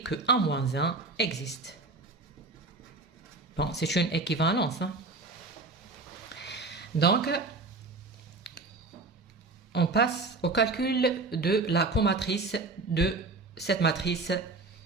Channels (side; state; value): left; quieter; 3.6 dB